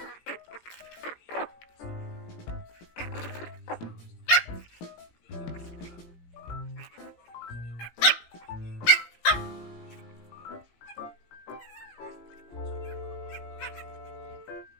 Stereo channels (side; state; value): right; late; 17 ms